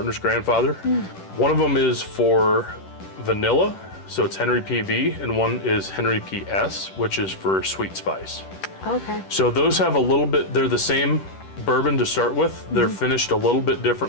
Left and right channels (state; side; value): late; right; 10 ms